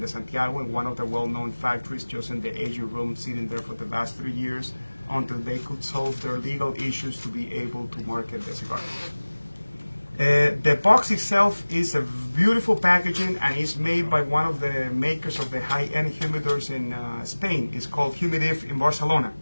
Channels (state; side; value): inverted; both; correlation -1.00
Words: Santiago, in one of the well-known factories, just in the aging room, sitting there for the last 3 years until they could solve their legal issues to be able to market the cigar. The box itself is a beautiful packaging, and is made by one of the makers of the high-end humidors in Spain. It's called Humidif in Barcelona.